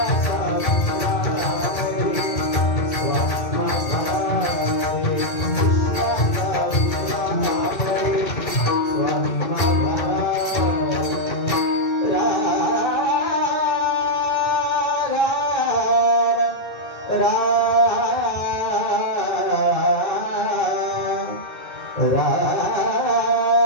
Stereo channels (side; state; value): right; late; 2.2 ms